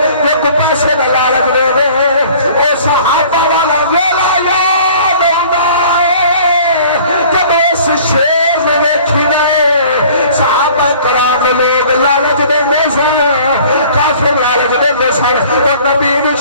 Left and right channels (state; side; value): inverted; both; correlation -0.50